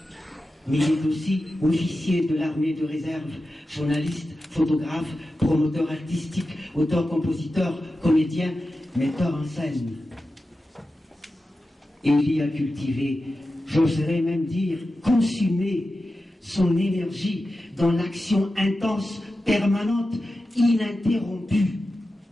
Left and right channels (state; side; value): normal; both; correlation 0.92